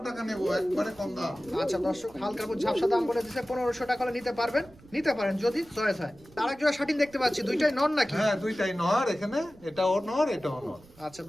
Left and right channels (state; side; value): noise; right; rumble, 24 dB below the sound